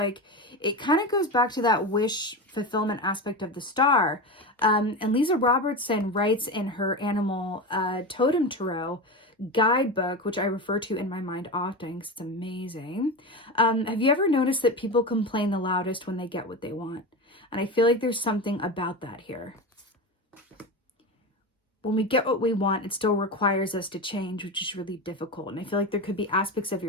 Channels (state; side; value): normal; both; correlation 0.21